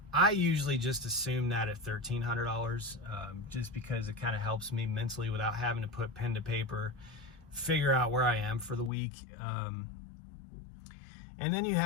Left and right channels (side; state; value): right; drops out; at 8.9 s